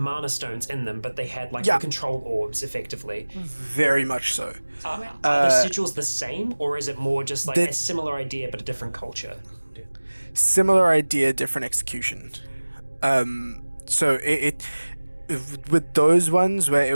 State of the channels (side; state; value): both; inverted; correlation -1.00